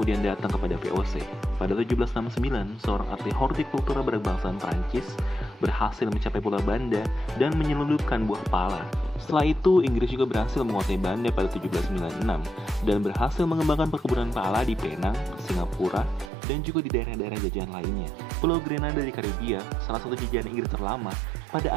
datang kepada VOC. Pada 1769, seorang ahli hortikultura berbangsaan Prancis berhasil mencapai Pulau Banda dan menyelundupkan buah pala. Setelah itu, Inggris juga berhasil menguasai Banda pada 1796 dan berhasil mengembangkan perkebunan pala di Penang, Singapura, dan juga di daerah-daerah jajahan lainnya. Pulau Grenada di Karibia, salah satu jajahan Inggris terlama, pada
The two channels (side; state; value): left; drops out; at 16.3 s